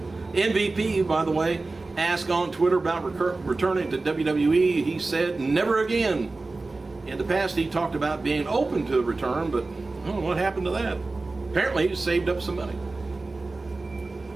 MVP, by the way, asked on Twitter about returning to WWE. He said, never again. In the past, he talked about being open to a return, but I don't know what happened to that. Apparently, he saved up some money.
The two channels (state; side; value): quieter; left; 3.4 dB